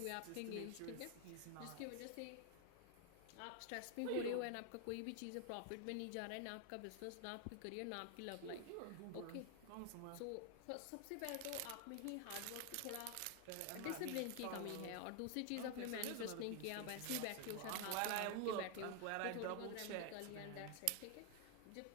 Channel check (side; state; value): both; different; correlation 0.00